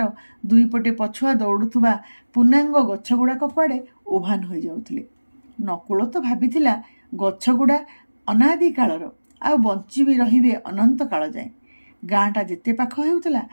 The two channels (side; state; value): both; inverted; correlation -1.00